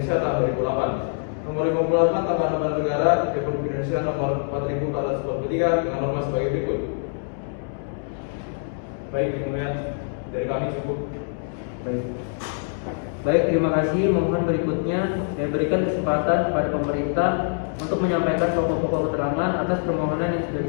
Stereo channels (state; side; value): silent; right; digital silence